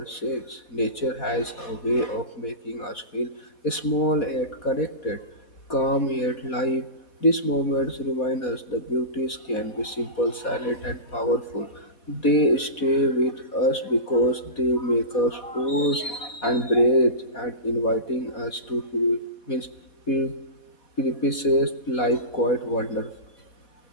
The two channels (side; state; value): right; late; 4.1 ms